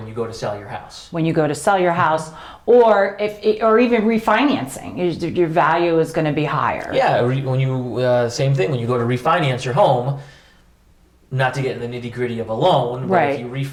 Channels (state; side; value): identical; both; correlation 1.00